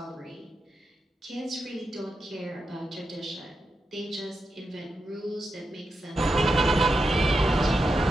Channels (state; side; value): normal; both; correlation 0.87